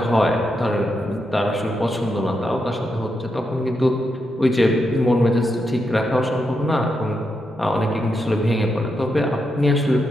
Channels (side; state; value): both; normal; correlation 0.84